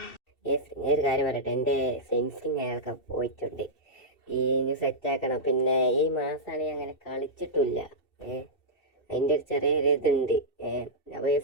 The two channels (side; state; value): right; late; 2.7 ms